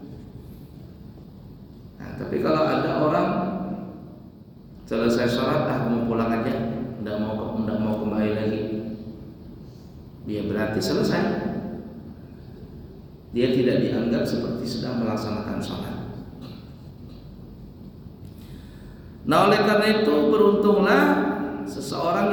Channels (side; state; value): both; identical; correlation 1.00